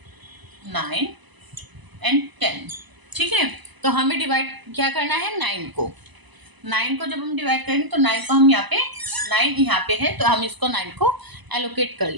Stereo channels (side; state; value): left; late; 1.0 ms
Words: 9 एंड 10। ठीक है, तो हमें डिवाइड क्या करना है? 9 को। 9 को जब हम डिवाइड करेंगे तो 9 को हम यहाँ पे 9 यहाँ पे है तो हम इसको 9 को एलोकेट कर